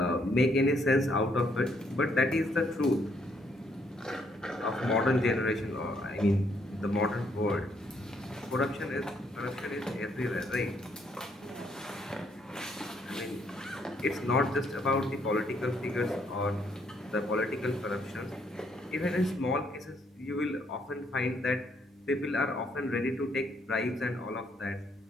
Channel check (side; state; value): both; normal; correlation 0.71